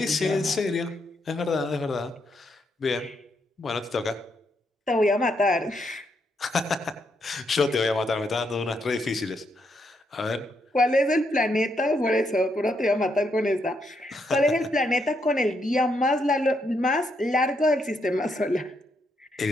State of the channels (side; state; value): both; normal; correlation 0.78